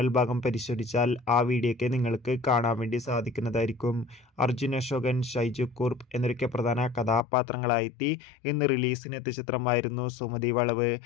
ഭാഗം പരിശോധിച്ചാൽ ആ വീഡിയോയ്ക്ക് നിങ്ങൾക്ക് കാണാൻ വേണ്ടി സാധിക്കുന്നതായിരിക്കും. അർജുൻ അശോകൻ, ഷൈജു കുർപ്പ് എന്നൊക്കെ പ്രധാന കഥാപാത്രങ്ങളായെത്തി ഇന്ന് റിലീസിനെത്തിയ ചിത്രമായിരുന്നു സുമതി വളവ്.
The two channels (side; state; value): right; drops out; at 7.2 s